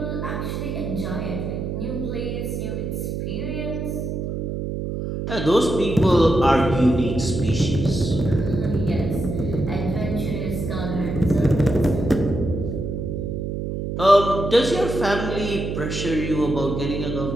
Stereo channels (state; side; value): noise; right; hum, 3 dB below the sound